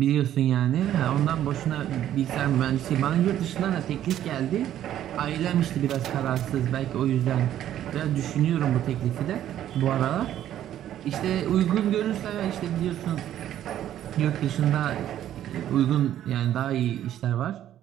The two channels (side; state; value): left; quieter; 11.6 dB